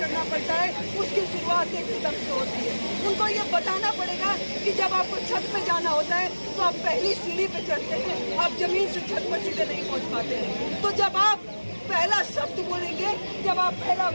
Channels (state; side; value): inverted; both; correlation -1.00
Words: पड़ता है उसकी शुरुआत एक कदम से होती है। उनको ये बताना पड़ेगा कि जब आपको छत पे जाना होता है तो आप पहली सीढ़ी पे चढ़ते हैं, आप जमीन से छत पर सीधे नहीं पहुंच पाते हैं। तो जब आप पहला शब्द बोलेंगे, जब आप पहला